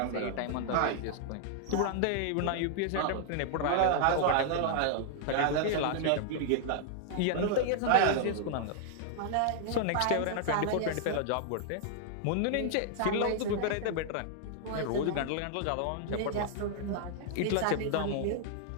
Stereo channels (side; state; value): both; different; correlation -0.01